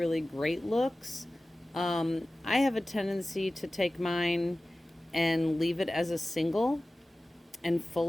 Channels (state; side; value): normal; both; correlation 0.97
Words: great looks. I have a tendency to take mine and leave it as a single and